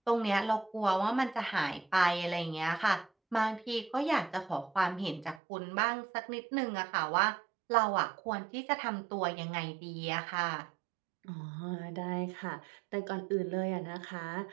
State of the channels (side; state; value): left; drops out; at 5.4 s